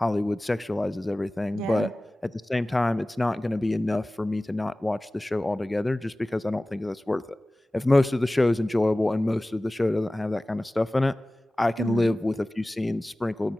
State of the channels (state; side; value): normal; both; correlation 0.98